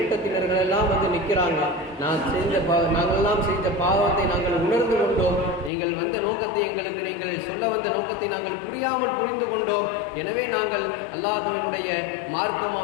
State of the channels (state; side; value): drops out; right; at 5.7 s